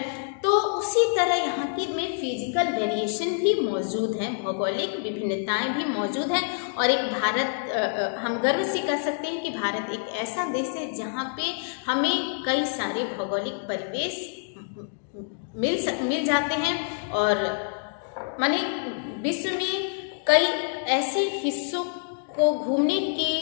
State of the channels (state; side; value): silent; right; digital silence